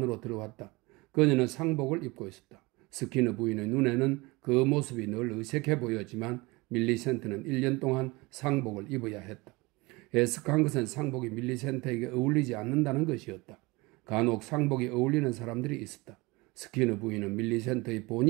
들어왔다. 그녀는 상복을 입고 있었다. 스키너 부인의 눈에는 그 모습이 늘 어색해 보였지만 밀리센트는 1년 동안 상복을 입어야 했다. 애석한 것은 상복이 밀리센트에게 어울리지 않는다는 것이었다. 간혹 상복이 어울리는 사람들이 있었다. 스키너 부인은 밀리센트의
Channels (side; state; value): left; quieter; 23.8 dB